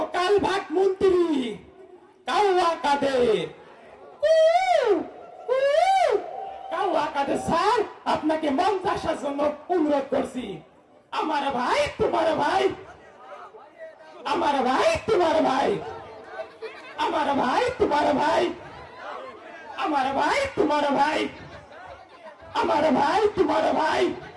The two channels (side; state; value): both; identical; correlation 1.00